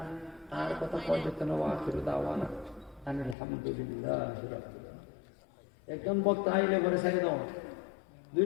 আর কথা পর্যন্ত দাওয়ানা আলহামদুলিল্লাহ একজন বক্তা আইলে ঘরে ছেড়ে দাও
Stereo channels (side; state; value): right; drops out; at 3.4 s